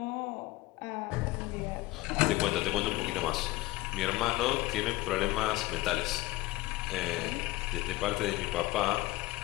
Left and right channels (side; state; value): right; quieter; 19.1 dB